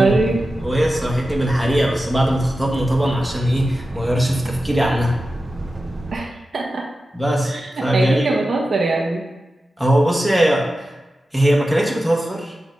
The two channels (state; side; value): normal; both; correlation 0.93